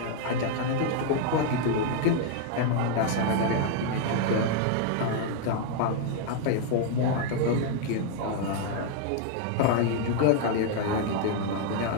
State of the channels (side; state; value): both; different; correlation 0.00